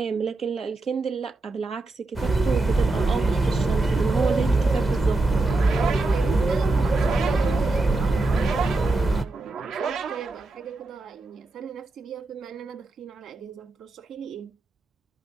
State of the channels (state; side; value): quieter; left; 3.1 dB